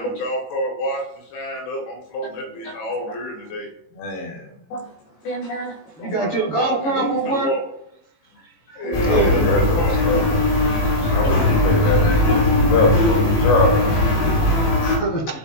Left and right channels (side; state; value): right; late; 18 ms